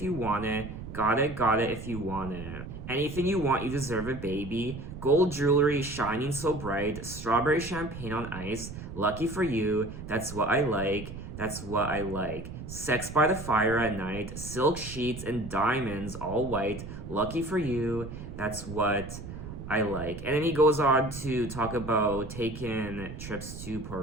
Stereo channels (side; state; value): right; noise; rumble, 10 dB below the sound